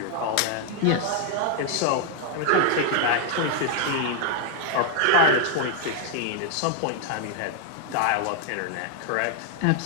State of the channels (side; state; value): both; different; correlation 0.00